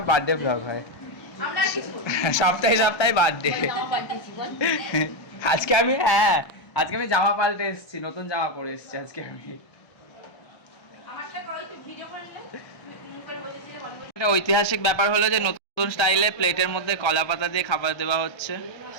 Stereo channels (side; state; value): right; late; 1.3 ms